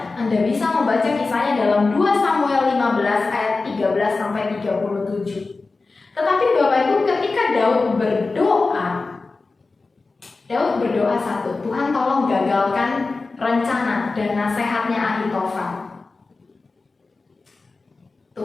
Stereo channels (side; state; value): right; quieter; 3.8 dB